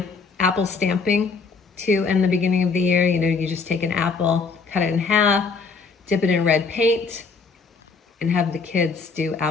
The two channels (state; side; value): quieter; right; 4.8 dB